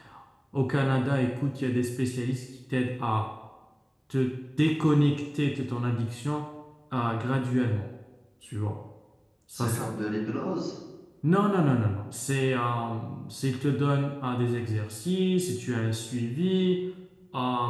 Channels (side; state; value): both; identical; correlation 1.00